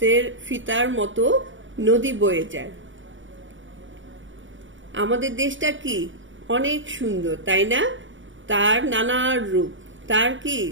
ফিতার মতো নদী বয়ে যায়। আমাদের দেশটা কি অনেক সুন্দর, তাই না? তার নানা রূপ, তার কি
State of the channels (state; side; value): late; left; 0.56 ms